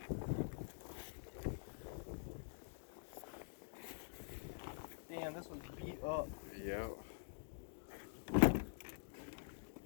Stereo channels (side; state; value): right; silent; digital silence